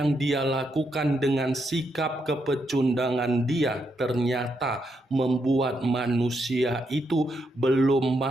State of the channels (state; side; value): normal; both; correlation 0.80